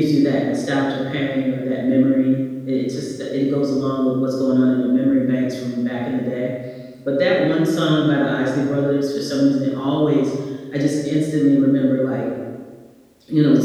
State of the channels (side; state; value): both; identical; correlation 1.00